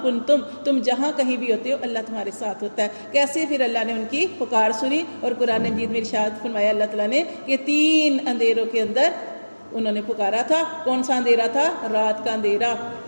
کنتم، تم جہاں کہیں بھی ہوتے ہو اللہ تمہارے ساتھ ہوتا ہے۔ کیسے؟ پھر اللہ نے ان کی پکار سنی، اور قرآن مجید میں ارشاد فرمایا اللہ تعالیٰ نے کہ تین اندھیروں کے اندر انہوں نے پکارا تھا۔ کون سا اندھیرا تھا؟ رات کا اندھیرا،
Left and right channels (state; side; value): inverted; both; correlation -1.00